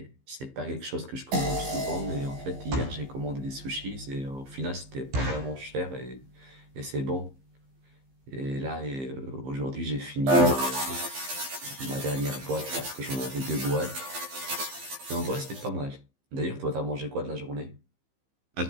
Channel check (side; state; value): left; late; 15 ms